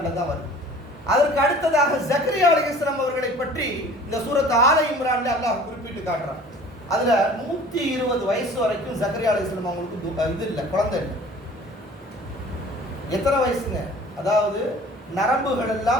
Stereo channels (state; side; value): normal; both; correlation 0.47